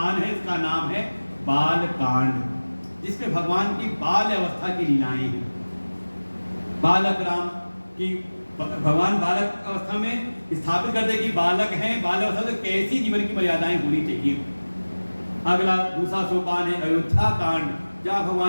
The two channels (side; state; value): both; inverted; correlation -1.00